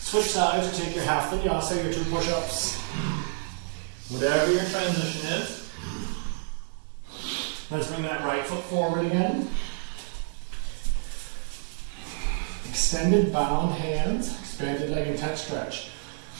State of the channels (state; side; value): silent; left; digital silence